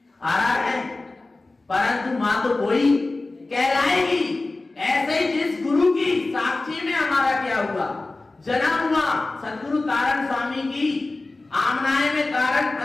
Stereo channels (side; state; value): right; quieter; 3.2 dB